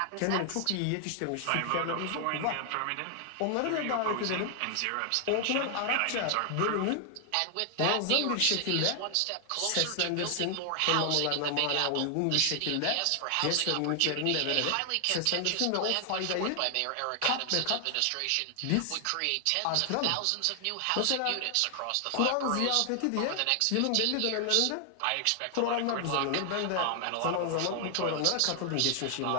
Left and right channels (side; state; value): both; different; correlation 0.00